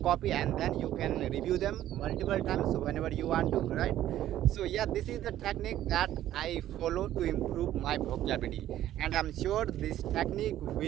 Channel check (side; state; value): left; quieter; 12.8 dB